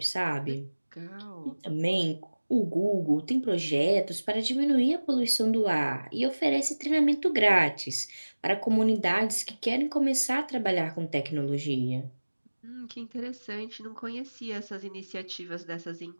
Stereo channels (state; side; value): inverted; both; correlation -1.00